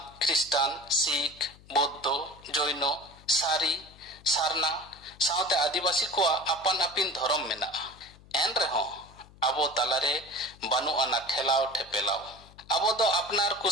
ख्रिस्टान सिख बौद्ध जैन सारी सारना साउते आदिवासी को अपन अपिन धर्म मेना एन रहो अबो तालारे बानु आना ठेलाव ठेपेलाव अबो दो अपनार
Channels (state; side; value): noise; left; hum, 23 dB below the sound